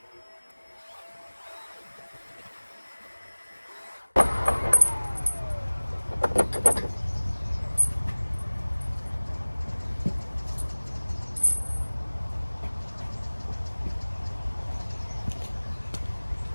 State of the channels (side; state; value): both; inverted; correlation -1.00